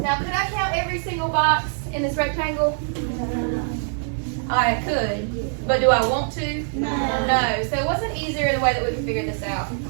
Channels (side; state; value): left; silent; 63 dB below the other